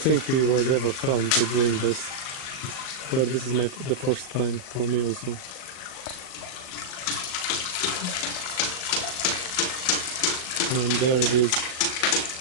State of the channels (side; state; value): right; late; 38 ms